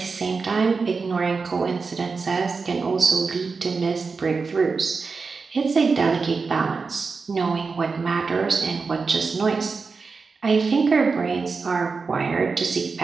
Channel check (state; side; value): quieter; left; 4.6 dB